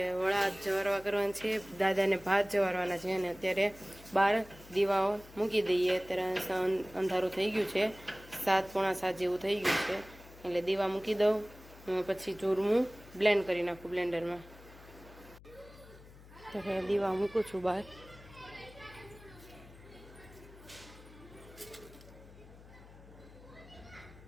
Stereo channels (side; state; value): left; noise; hum, 20 dB below the sound